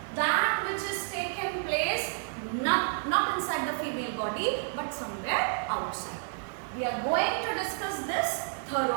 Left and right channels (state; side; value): silent; left; 58 dB below the other